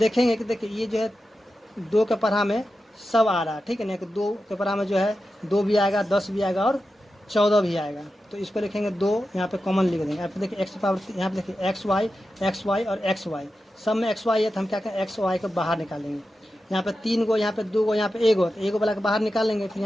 कि देखिए ये जो है 2 के पढ़ा में सब आ रहा है। ठीक है ना, कि 2 के पढ़ा में जो है 2 भी आएगा, 10 भी आएगा और 14 भी आएगा। तो इसको लिखेंगे 2, यहाँ पे कॉमन लिख देंगे। यहाँ पे देखिए एक्स पावर, यहाँ पे देखिए एक्स वाई और एक्स वाई, सब में एक्स वाई है, तो हम क्या करें एक्स वाई को बाहर निकालेंगे। यहाँ पे 3 गो, यहाँ पे 2 गो, यहाँ पे 1 गो, तो 1 गो वाला के बाहर निकालेंगे। फिर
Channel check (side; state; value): both; normal; correlation 0.91